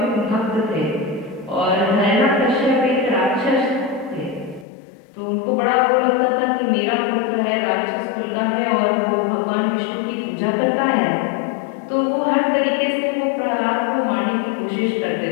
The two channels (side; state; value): right; drops out; at 4.7 s